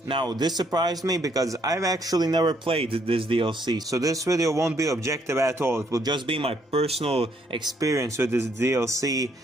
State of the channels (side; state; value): both; normal; correlation 0.69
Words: Now, this surprised me because I've actually never played this DLC, so this video won't be objective at all. It will just be my personal experience with this DLC